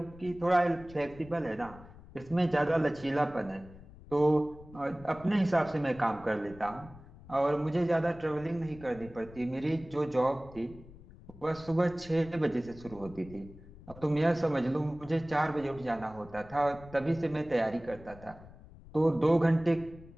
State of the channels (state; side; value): noise; left; rumble, 19 dB below the sound